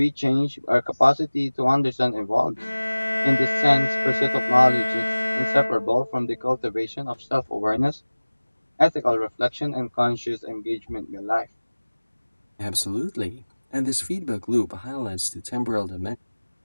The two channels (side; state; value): both; inverted; correlation -1.00